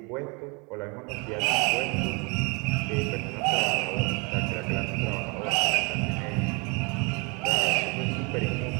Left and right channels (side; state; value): left; quieter; 30.5 dB